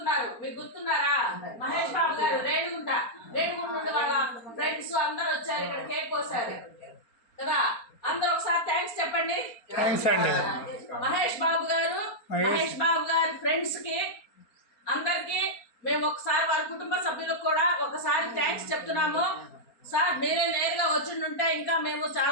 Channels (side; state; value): right; late; 4.3 ms